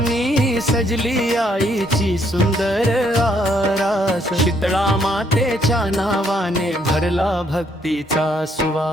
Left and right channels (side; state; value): both; normal; correlation 0.70